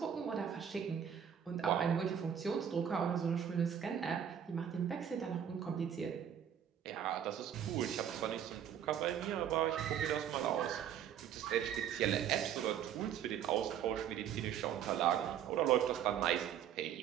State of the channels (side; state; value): left; quieter; 9.1 dB